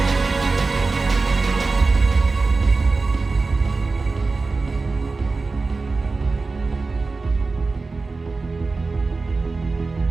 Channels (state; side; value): quieter; left; 3.9 dB